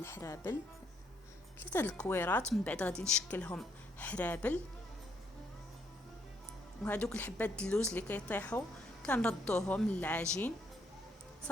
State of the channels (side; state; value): both; normal; correlation 0.72